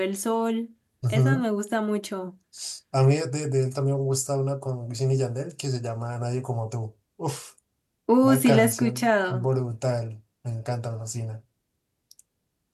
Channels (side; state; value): both; identical; correlation 1.00